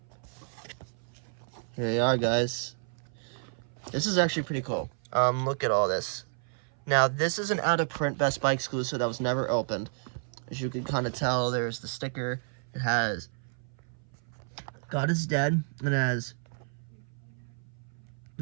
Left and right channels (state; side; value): silent; left; 56 dB below the other